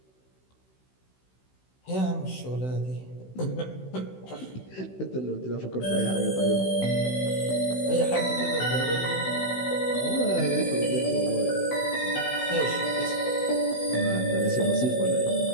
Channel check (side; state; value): right; late; 16 ms